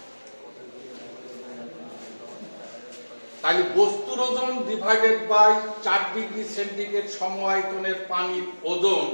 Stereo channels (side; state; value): both; inverted; correlation -1.00